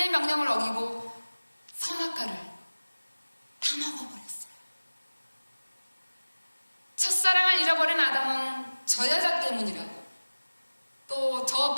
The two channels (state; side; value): inverted; both; correlation -1.00